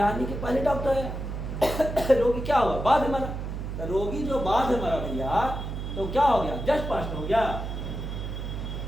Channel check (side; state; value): right; noise; hum, 5 dB below the sound